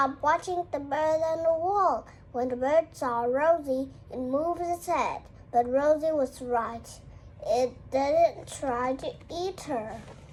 watching the bird on the wall. When the bird saw Rosie, it moved its head. But Rosie was right. It didn't try to eat her.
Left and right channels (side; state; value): both; identical; correlation 1.00